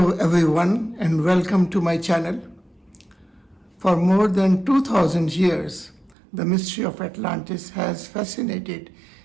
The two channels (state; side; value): drops out; left; at 6.2 s